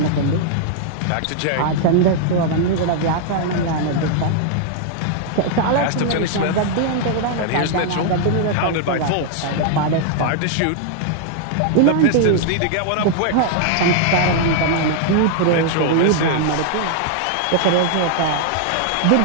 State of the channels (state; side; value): different; both; correlation 0.00